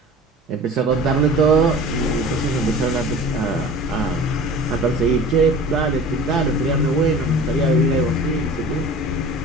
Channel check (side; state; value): both; normal; correlation 0.40